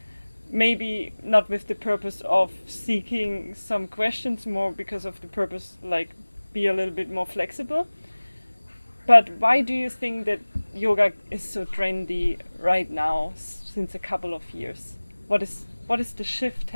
maybe not with the purpose of seeking some questions, more because of the purpose like be a little bit more flexible. But why do you think that yoga is so trendy right now since a couple of years? What is the shift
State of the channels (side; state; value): both; inverted; correlation -1.00